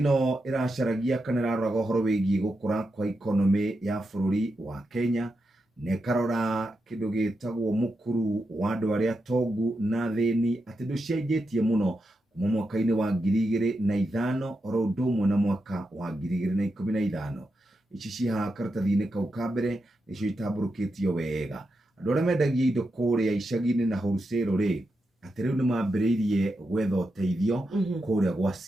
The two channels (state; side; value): normal; both; correlation 0.86